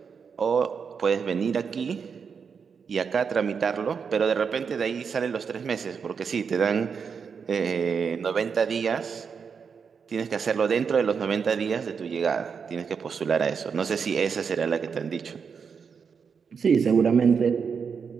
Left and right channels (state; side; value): quieter; left; 6.2 dB